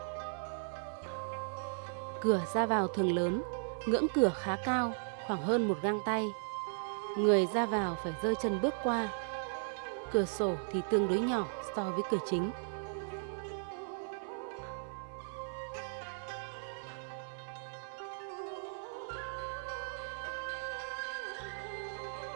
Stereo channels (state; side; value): silent; left; 53 dB below the other